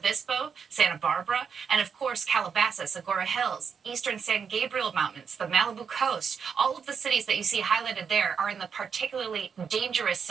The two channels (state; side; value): quieter; left; 6.5 dB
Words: Santa Barbara, and of course Calabasas, Agoura Hills, eastern San Gabriel Mountains, the Malibu coast. All of the cities that you see highlighted there are in the particularly dangerous